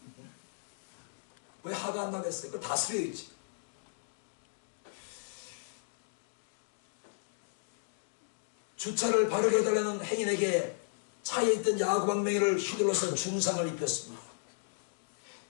왜 화가 안 나겠어요? 그거 다스려야지. 주차를 바르게 해달라는 행인에게 차에 있던 야구방망이를 휘둘러서 중상을 입혔습니다.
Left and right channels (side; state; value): right; silent; digital silence